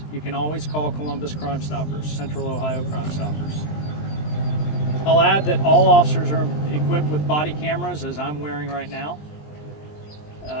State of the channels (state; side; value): late; right; 20 ms